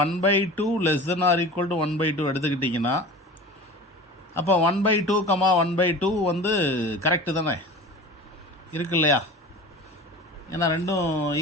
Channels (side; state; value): both; normal; correlation 0.36